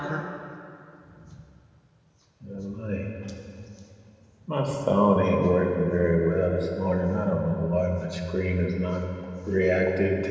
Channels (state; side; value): identical; both; correlation 1.00